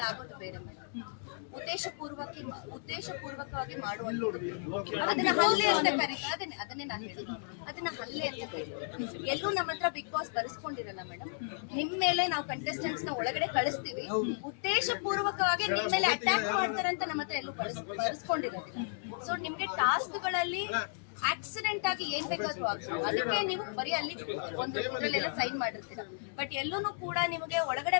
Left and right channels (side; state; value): right; silent; digital silence